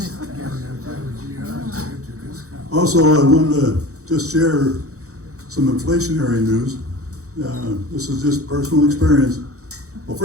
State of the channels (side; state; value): left; late; 0.65 ms